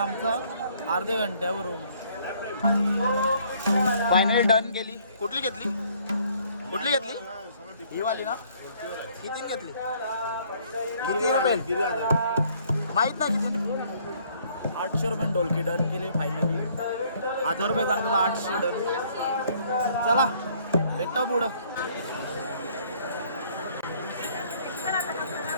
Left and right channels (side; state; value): both; inverted; correlation -0.62